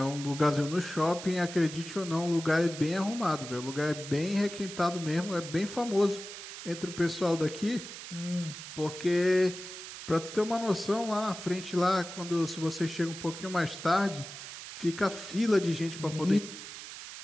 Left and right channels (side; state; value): right; noise; hiss, 11 dB below the sound